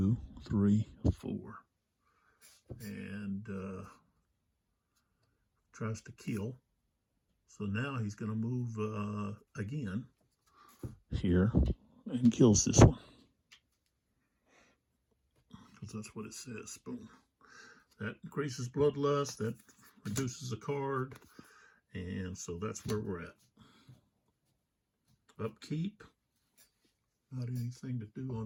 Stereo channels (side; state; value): both; identical; correlation 1.00